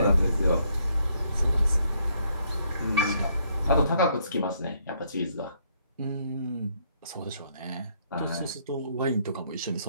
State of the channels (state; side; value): inverted; both; correlation -0.70